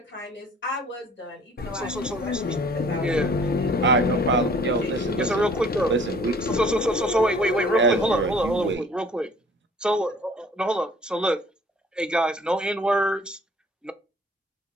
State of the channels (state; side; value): normal; both; correlation 0.53